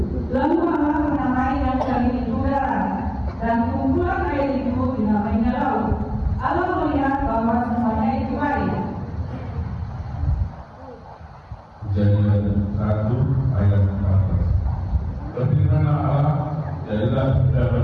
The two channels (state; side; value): identical; both; correlation 1.00